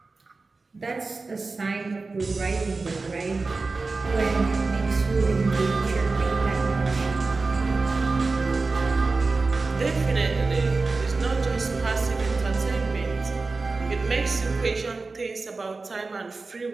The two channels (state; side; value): quieter; left; 3.8 dB